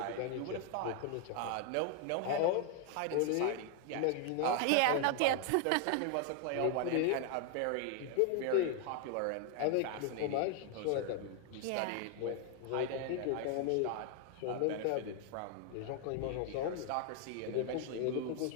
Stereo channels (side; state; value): both; different; correlation 0.00